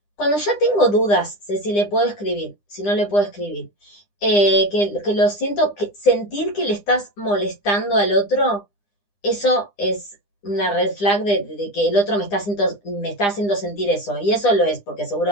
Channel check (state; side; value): late; right; 9.9 ms